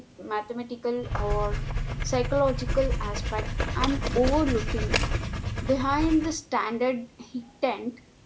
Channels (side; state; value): both; identical; correlation 1.00